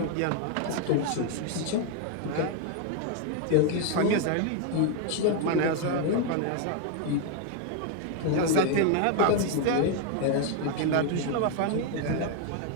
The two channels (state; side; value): different; both; correlation 0.01